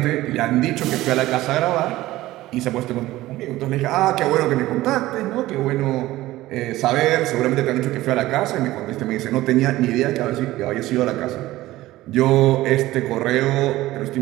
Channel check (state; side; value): quieter; left; 16.7 dB